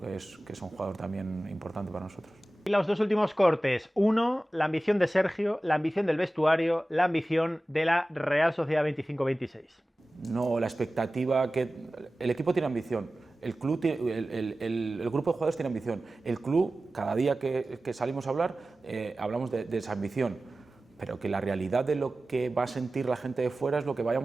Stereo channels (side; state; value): both; normal; correlation 0.96